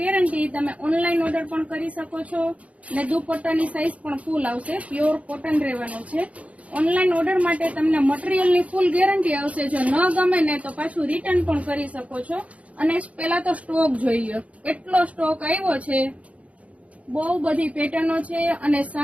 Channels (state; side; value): late; left; 0.066 ms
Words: તમે ઓનલાઈન ઓર્ડર પણ કરી શકો છો અને દુપટ્ટાની સાઇઝ પણ ફૂલ આવશે. પ્યોર કોટન રહેવાનું છે. ઓનલાઈન ઓર્ડર માટે તમને મટીરિયલની ફૂલ ગેરંટી આવશે. જો ન ગમે ને તો પાછું રિટર્ન પણ કરી શકો છો. અને પહેલા તો સ્ટોક જોઈએ, એટલો સ્ટોક આવ્યો છે. બહુ બધી પેટર્નો છે અને